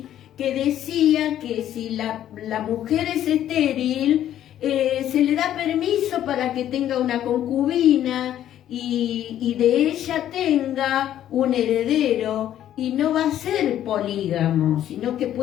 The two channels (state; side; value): quieter; right; 11.5 dB